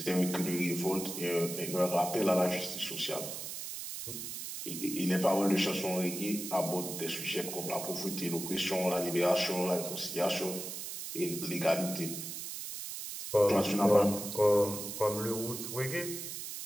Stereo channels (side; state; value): right; noise; hiss, 7 dB below the sound